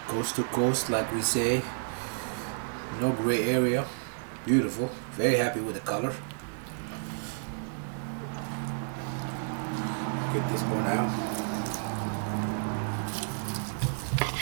Coast to coast, like we say. No gray area. Beautiful. Very happy with the color. Get this one out.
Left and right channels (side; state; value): left; silent; digital silence